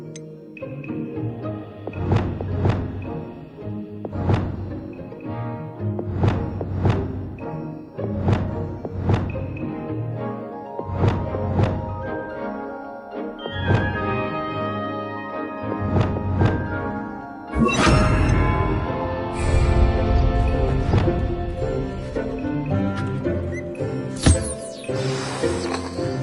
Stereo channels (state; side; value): identical; both; correlation 1.00